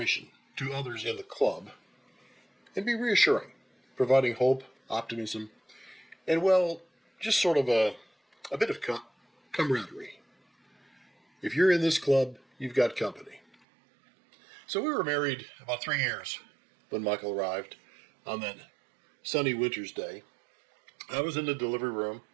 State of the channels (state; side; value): drops out; left; at 13.6 s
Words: to others in the club and be reassuring, providing hope, optimism, and just sort of a bit of camaraderie. If you're in this club, you've got company. So we were married about 3 years when Michael arrived on that sunny winter's day. I was in the delivery room.